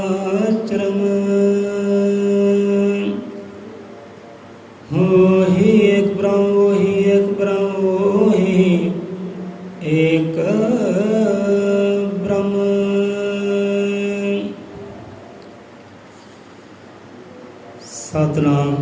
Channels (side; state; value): both; identical; correlation 1.00